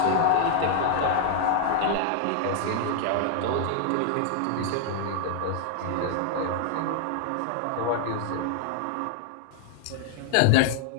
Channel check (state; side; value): different; both; correlation 0.00